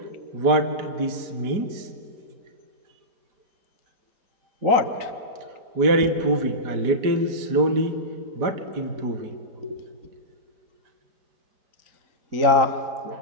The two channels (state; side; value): late; left; 5.0 ms